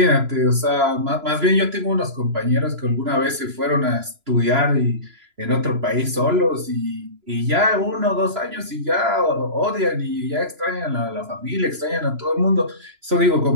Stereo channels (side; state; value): left; late; 3.0 ms